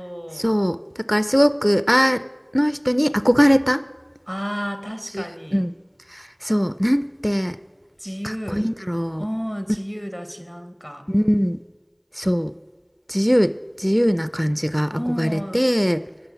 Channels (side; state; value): both; identical; correlation 1.00